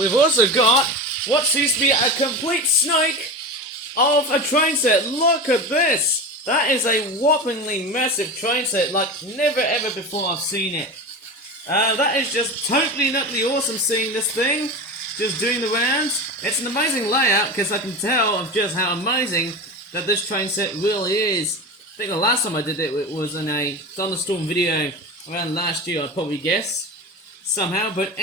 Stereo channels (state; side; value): normal; both; correlation 0.26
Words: also got what seems to be a complete snake of a train set. Look at this! That is a whoppingly massive train set, like never ever before I've seen it. That is just totally nutty awesome seeing this thing. Just doing the rounds. It's an amazing layout because I can tell of just how amazing that this train set really is. I think the last time I did it was in a Thunderstorm video around last year, I'd probably guess. Somehow. But